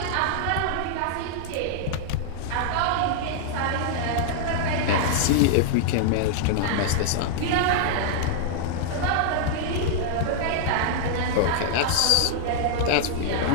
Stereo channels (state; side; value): different; both; correlation -0.01